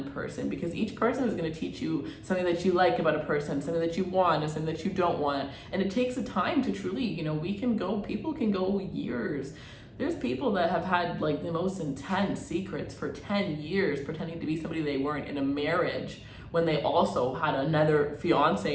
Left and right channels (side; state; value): both; identical; correlation 1.00